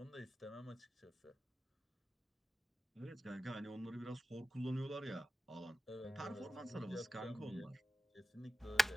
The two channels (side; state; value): both; normal; correlation 0.94